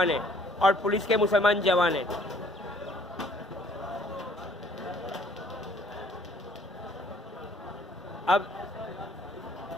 हैं और पुलिस के मुसलमान जवान हैं। अब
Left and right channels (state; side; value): normal; both; correlation 0.60